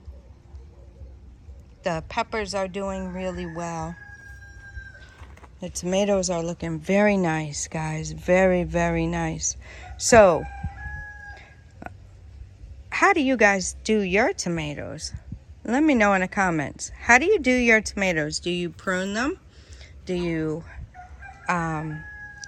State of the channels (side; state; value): both; identical; correlation 1.00